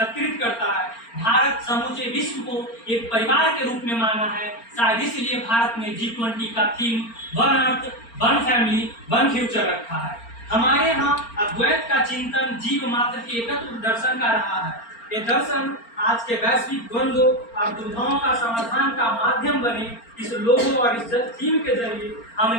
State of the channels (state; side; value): late; right; 4.4 ms